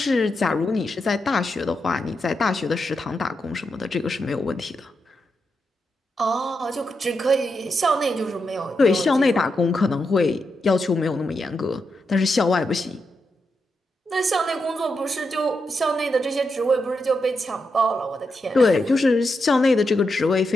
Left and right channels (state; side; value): normal; both; correlation 0.85